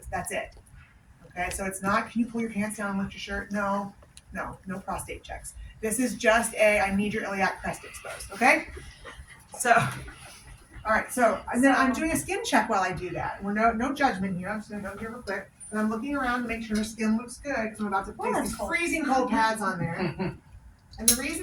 That's it. Okay, so it's not, can you pull your pants down and lift your shirt? No prostate checks. This is just I need your iliac crest exposed, okay? So, all right, so and then I'm doing a skin check while I do that. We're no judgment here. I'm just gonna go here real quick. And I'm looking around to make sure her skin looks good because I'm about to place these freezing cold pads on there. And the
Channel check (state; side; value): identical; both; correlation 1.00